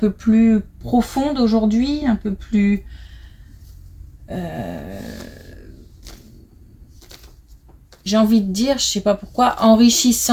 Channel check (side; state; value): both; identical; correlation 1.00